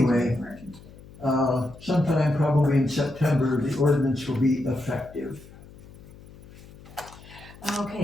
sometime probably in September, the ordinance will be effective.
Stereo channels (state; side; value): noise; left; hum, 20 dB below the sound